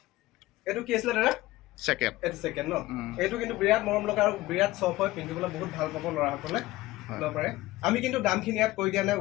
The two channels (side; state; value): right; quieter; 17.9 dB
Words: এইটো কি আছিলে দাদা? ছেকেণ্ড। এইটো ছেকেণ্ড ন? এইটো কিন্তু বিৰাট মৰম লগা আৰু বিৰাট চফ্ট হয়, পিন্ধিবলৈ বহুত ভাল পাব ল'ৰাসকলে ল'ব পাৰে। আমি কিন্তু দামখিনি ইয়াত কৈ দিয়া নাই,